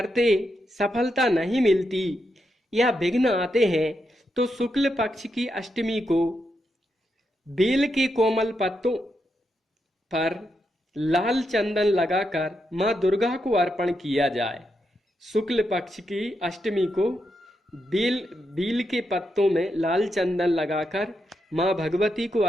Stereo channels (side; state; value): both; normal; correlation 0.83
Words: सफलता नहीं मिलती या विघ्न आते हैं तो शुक्ल पक्ष की अष्टमी को बेल के कोमल पत्तों पर लाल चंदन लगाकर मां दुर्गा को अर्पण किया जाए। शुक्ल पक्ष की अष्टमी को बेल के पत्तों में लाल चंदन लगाकर मां भगवती को